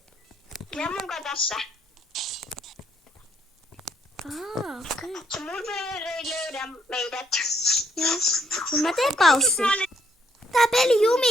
Ja munkaan tässä. Okei. Se murderer ei löydä meidät. Joo. Mut mä teen paussi. Tää peli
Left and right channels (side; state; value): both; normal; correlation 0.70